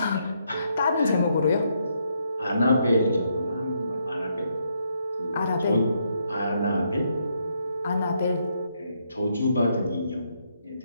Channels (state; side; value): inverted; both; correlation -0.76